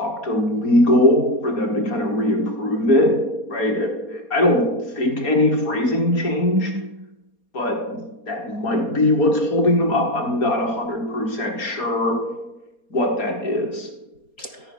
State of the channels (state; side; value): late; right; 4.2 ms